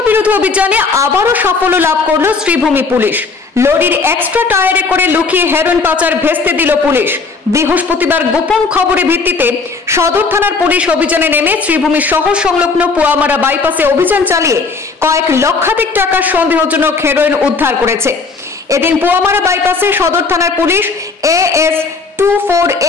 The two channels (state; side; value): quieter; right; 4.4 dB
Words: বিরোধী অভিযানে আবারও সাফল্য লাভ করল শ্রীভূমি পুলিশ। লরির এক্সট্রা টায়ারে করে লুকিয়ে হেরোইন পাচার ভেস্তে দিল পুলিশ। বৃহস্পতিবার গোপন খবরের ভিত্তিতে সদর থানার পুলিশ অভিযানে নেমে শ্রীভূমি শহর সংলগ্ন পুয়ামারা বাইপাসে অভিযান চালিয়ে কয়েক লক্ষাধিক টাকার সন্দেহজনক হেরোইন উদ্ধার করেছে। এদিন পুয়ামারা বাইপাসে সদর থানার পুলিশ AS